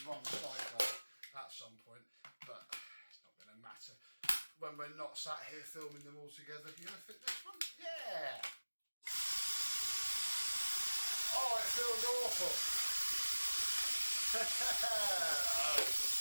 wrong side at some point, but it's not going to matter when we're not sat here filming them all together. You're going to fit this one? Yeah. Oh, it feels awful. Oh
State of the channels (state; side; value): inverted; both; correlation -1.00